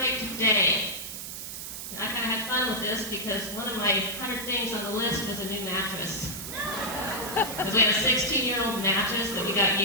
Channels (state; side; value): noise; right; hiss, 8 dB below the sound